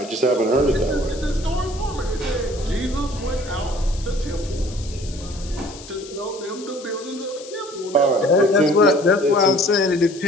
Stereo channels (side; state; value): left; noise; hiss, 17 dB below the sound